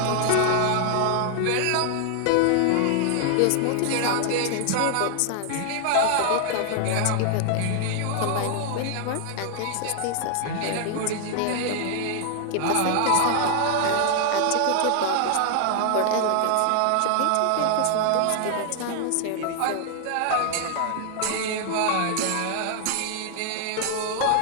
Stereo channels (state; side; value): different; both; correlation 0.00